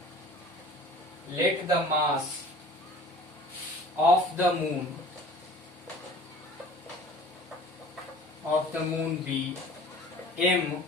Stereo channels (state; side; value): normal; both; correlation 0.45